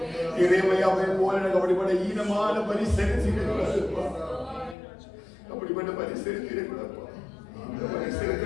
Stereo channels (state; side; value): drops out; right; at 4.8 s